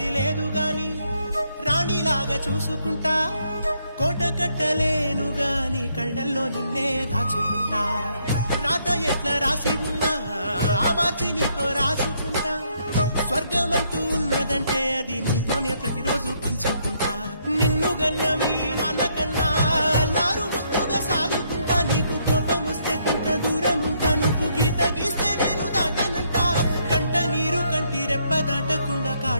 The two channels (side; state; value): both; inverted; correlation -0.72